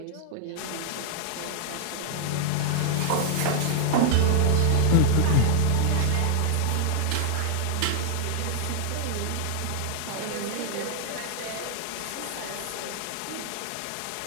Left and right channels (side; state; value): both; different; correlation -0.01